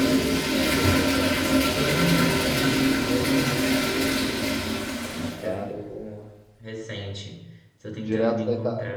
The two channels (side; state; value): both; identical; correlation 1.00